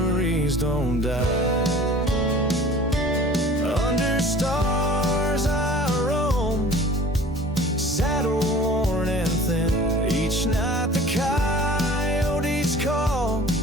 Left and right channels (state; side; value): normal; both; correlation 0.46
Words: don't die. Under stars I roam, saddle worn and thin. Each night the coyotes call,